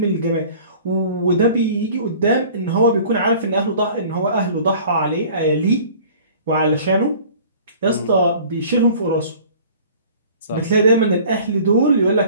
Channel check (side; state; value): both; inverted; correlation -0.48